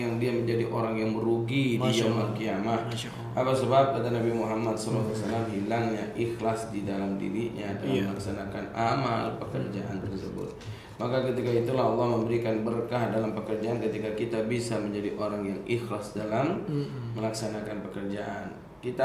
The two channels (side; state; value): both; identical; correlation 1.00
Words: dia menjadi orang yang merugi di yaumul kiamah. Apa sebab? Kata Nabi Muhammad SAW, hilangnya ikhlas di dalam dirinya dalam melaksanakan amal pekerjaan tersebut. Maka ketika itulah Allah memberikan berkah dalam pekerjaan ketika kita bisa menjadi orang yang ikhlas dalam melaksanakan pekerjaan.